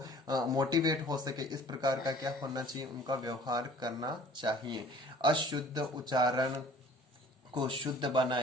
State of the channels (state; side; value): normal; both; correlation 0.50